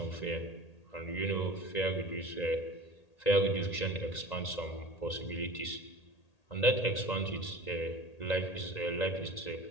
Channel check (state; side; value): late; right; 1.8 ms